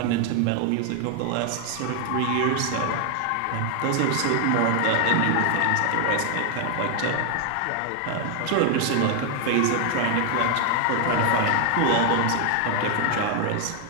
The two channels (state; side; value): different; both; correlation 0.00